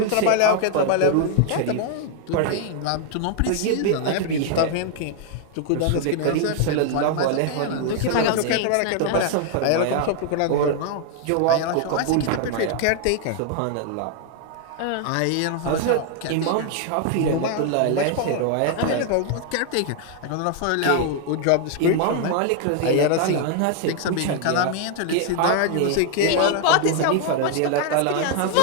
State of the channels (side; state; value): both; different; correlation 0.00